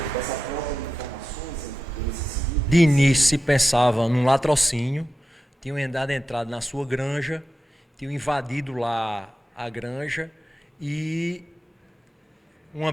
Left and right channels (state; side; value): normal; both; correlation 0.91